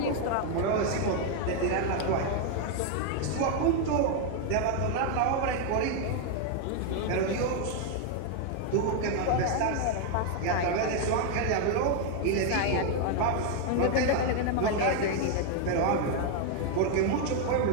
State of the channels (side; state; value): both; different; correlation 0.01